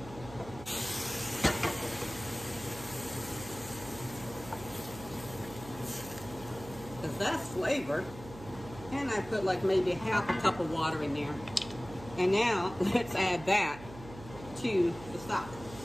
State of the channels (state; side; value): noise; right; hum, 15 dB below the sound